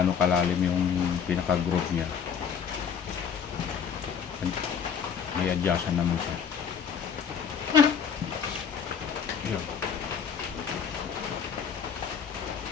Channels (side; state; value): right; quieter; 7.0 dB